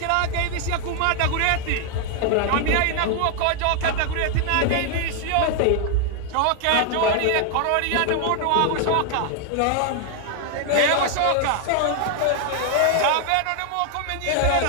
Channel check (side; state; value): both; different; correlation 0.00